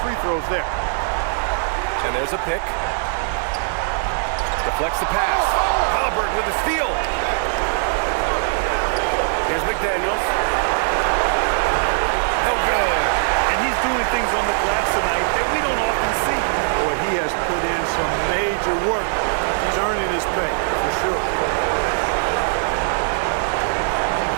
throws there. And there's a pick. Deflects the pass. Halliburton with a steal. Here's McDaniels. No good. And he's doing things on the glass tonight that we don't often see. Boy, he has put in some major work. He's earning his pay, for sure.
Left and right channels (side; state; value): left; silent; digital silence